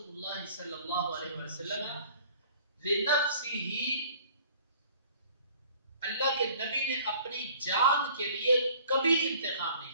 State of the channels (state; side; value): inverted; both; correlation -0.52